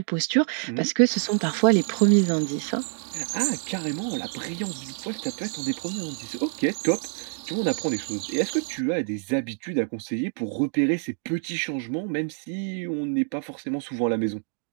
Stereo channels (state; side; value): silent; left; 57 dB below the other